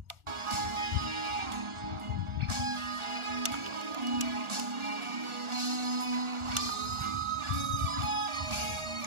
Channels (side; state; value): left; late; 1.4 ms